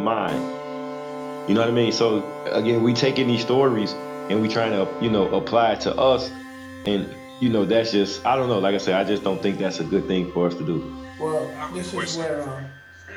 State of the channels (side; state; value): both; identical; correlation 1.00